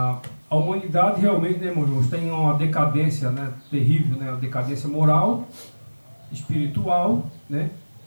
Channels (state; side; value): inverted; both; correlation -1.00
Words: humanidade realmente, né, irmão, está em uma decadência, né? Terrível, né? Uma decadência moral, espiritual, né?